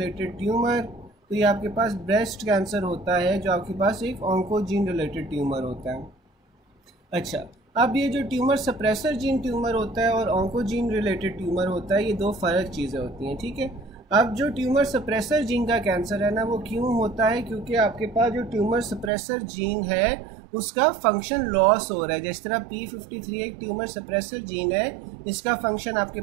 tumour? तो ये आपके पास ब्रेस्ट कैंसर होता है जो आपके पास एक ऑन्कोजीन रिलेटेड ट्यूमर होता है। अच्छा, अब ये जो ट्यूमर सप्रेसर जीन ट्यूमर होता है और ऑन्कोजीन रिलेटेड ट्यूमर होता है, ये दो फ़र्क चीज़ें होती हैं। ठीक है। अब जो ट्यूमर सप्रेसर जीन का कैंसर है ना, वो क्यों होता है? क्योंकि आपके पास जो ट्यूमर सप्रेसर जीन है उसका फंक्शन लॉस हो रहा है। जिस तरह P53 एक ट्यूमर सप्रेसर जीन है, इसका फंक्शन आपके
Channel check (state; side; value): drops out; left; at 19.1 s